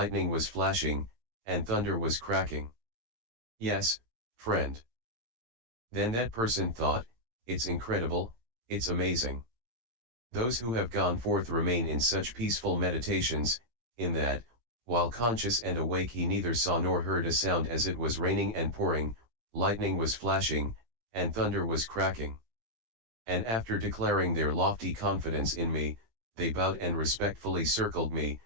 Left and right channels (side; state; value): left; late; 18 ms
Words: was flashing, and thunder was cracking?" "Yes, friend." Then that person thought, "It's incredible, it's amazing. Those who have gone forth remain in such peaceful meditations, in that, while conscious and awake he neither saw nor heard a sound as it was raining and pouring, lightning was flashing, and thunder was cracking." And after declaring their lofty confidence in me, they bowed and respectfully circled me,